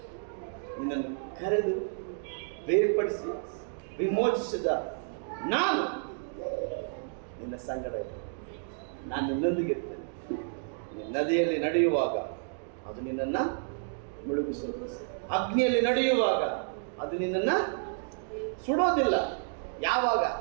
ನಿನ್ನನ್ನು ಕರೆದು ಬೇರ್ಪಡಿಸಿ ವಿಮೋಚಿಸಿದ ನಾನು ನಿನ್ನ ಸಂಗಡ ಇರ್ತೇನೆ. ನಾನು ನಿನ್ನೊಂದಿಗೆ ಇರ್ತೇನೆ. ನಿನ್ನ ನದಿಯಲ್ಲಿ ನಡೆಯುವಾಗ ಅದು ನಿನ್ನನ್ನು ಮುಳುಗಿಸೋದು, ಅಗ್ನಿಯಲ್ಲಿ ನಡೆಯುವಾಗ ಅದು ನಿನ್ನನ್ನು ಸುಡೋದಿಲ್ಲ. ಯಾವಾಗ?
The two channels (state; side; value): silent; left; digital silence